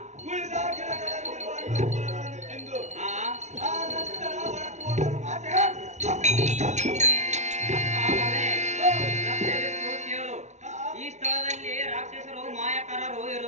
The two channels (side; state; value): left; late; 0.33 ms